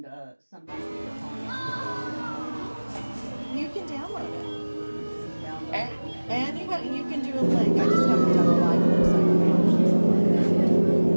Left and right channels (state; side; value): inverted; both; correlation -1.00